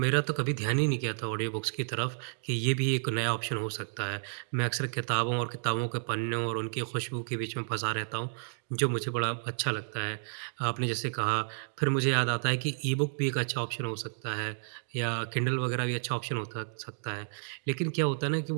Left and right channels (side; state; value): left; silent; digital silence